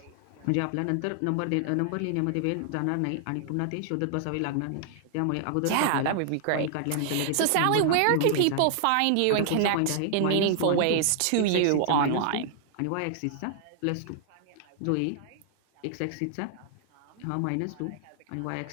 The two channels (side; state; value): both; different; correlation -0.01